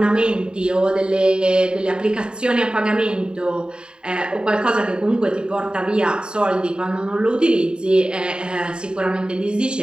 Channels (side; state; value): left; late; 0.049 ms